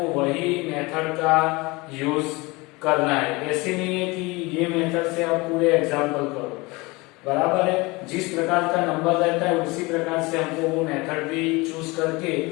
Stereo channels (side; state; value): right; quieter; 24.1 dB